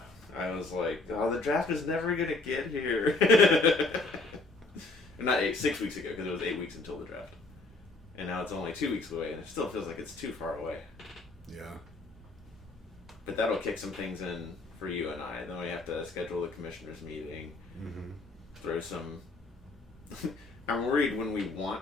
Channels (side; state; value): right; quieter; 3.3 dB